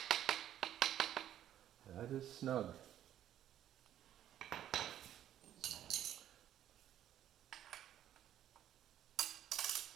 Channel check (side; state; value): left; quieter; 11.4 dB